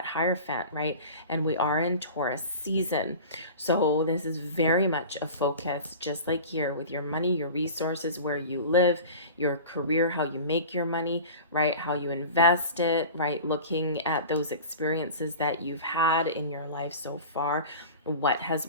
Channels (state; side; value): inverted; both; correlation -0.36